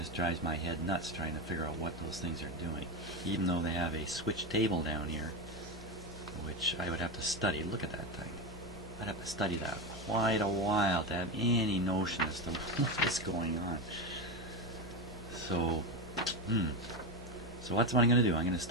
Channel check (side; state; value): both; normal; correlation 0.16